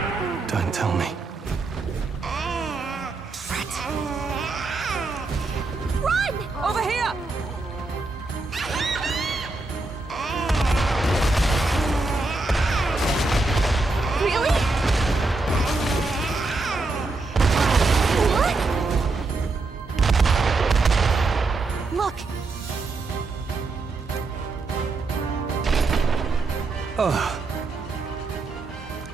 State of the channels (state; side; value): quieter; left; 3.4 dB